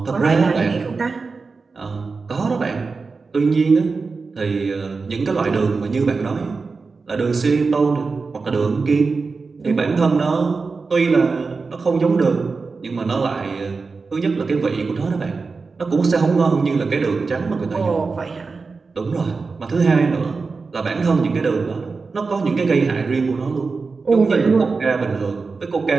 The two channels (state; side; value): quieter; left; 4.4 dB